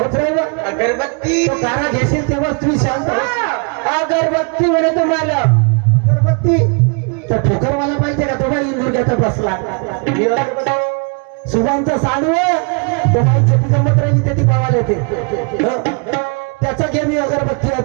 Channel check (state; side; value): quieter; left; 37.3 dB